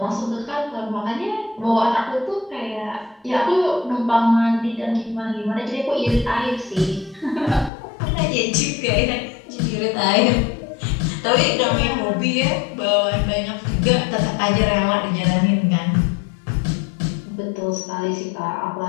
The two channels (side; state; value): right; drops out; at 7.7 s